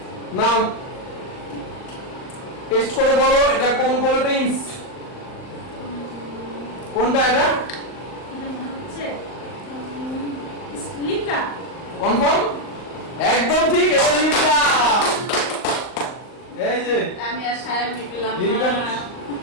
নাও টেস্ট করে বলো এটা কোন কোল্ড ড্রিঙ্কস। কোনটা এটা? এটা মনে হচ্ছে লিমকা। কনফার্ম? একদম ঠিক, এটা লিমকা। এই যে আমি আর সায়ন পেলাম লিমকা, না।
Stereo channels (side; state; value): right; late; 39 ms